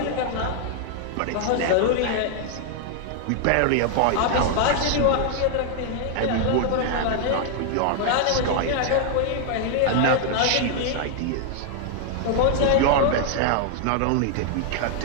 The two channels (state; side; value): different; both; correlation 0.00